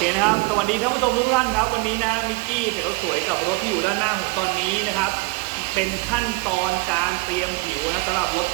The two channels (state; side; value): quieter; left; 25.6 dB